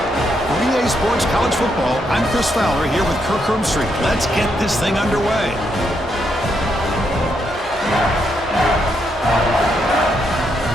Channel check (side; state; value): both; normal; correlation 0.78